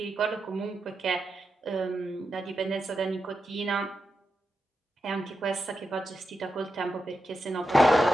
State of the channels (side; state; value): both; normal; correlation 0.87